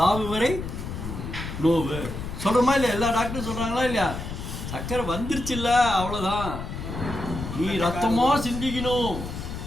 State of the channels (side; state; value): left; noise; rumble, 7 dB below the sound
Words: வரை நோவு சொல்கிறோமா இல்லையா? எல்லா டாக்டரும் சொல்கிறாங்களா இல்லையா? சக்கரை வந்துருச்சு இல்லை, அவ்வளோதான். நீ ரத்தமாக சிந்திக்கணும்.